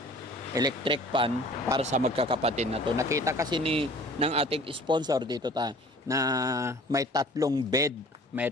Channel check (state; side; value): normal; both; correlation 0.48